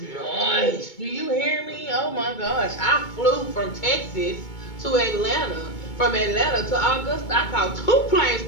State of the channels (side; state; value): right; late; 2.2 ms